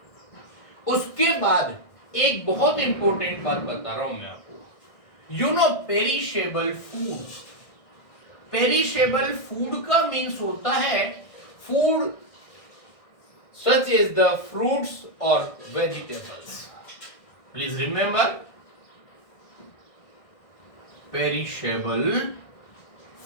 उसके बाद एक बहुत इंपॉर्टेंट बात बता रहा हूं मैं आपको, you know perishable food. Perishable food का मीन्स होता है food such as the fruits और vegetables. Please remember, perishable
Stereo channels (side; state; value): right; late; 1.6 ms